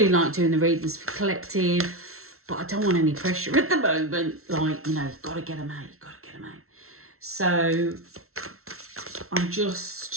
like doing the readings for collective, but I don't want any pressure at the moment. Like, you know, you've got to get them out, So I'm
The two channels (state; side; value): late; left; 0.63 ms